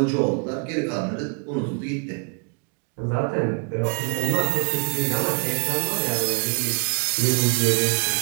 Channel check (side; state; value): left; quieter; 37.0 dB